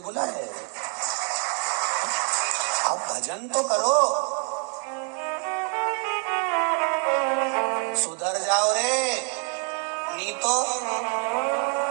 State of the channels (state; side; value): quieter; left; 38.9 dB